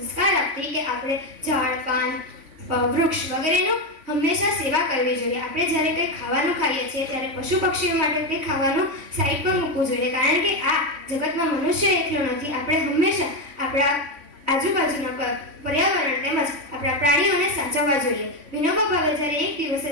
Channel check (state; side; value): late; left; 3.5 ms